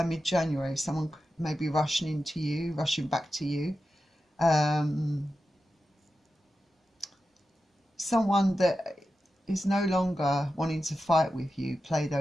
mid-January, someone may be rushing into you, rushing back to you. Someone that is no longer wanting to fight with you, play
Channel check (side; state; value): both; normal; correlation 0.91